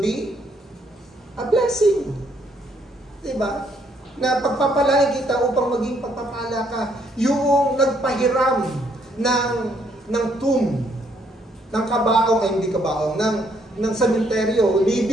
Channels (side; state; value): both; normal; correlation 0.69